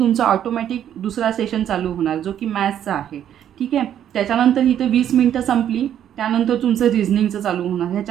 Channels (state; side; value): quieter; left; 10.2 dB